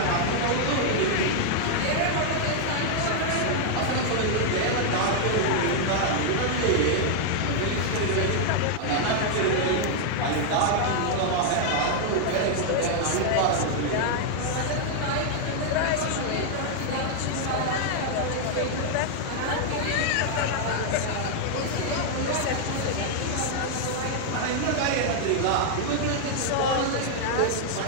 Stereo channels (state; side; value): different; both; correlation 0.00